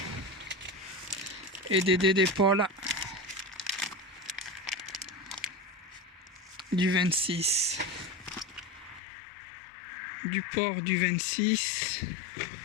Et des dés d'épaule du 26. Du porc du 26.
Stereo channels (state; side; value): drops out; right; at 9.0 s